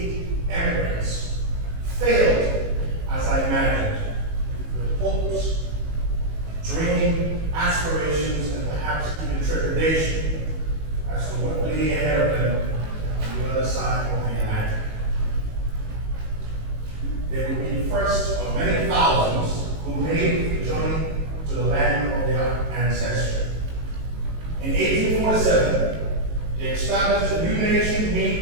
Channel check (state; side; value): late; left; 19 ms